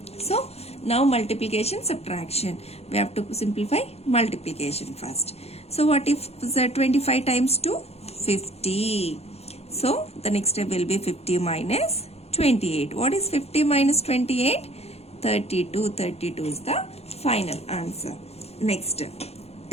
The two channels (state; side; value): late; right; 0.30 ms